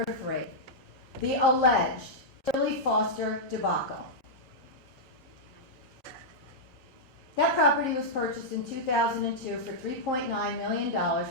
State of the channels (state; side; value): normal; both; correlation -0.07